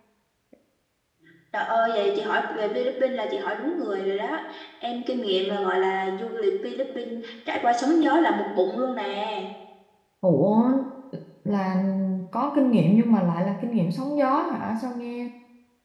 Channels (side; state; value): both; identical; correlation 1.00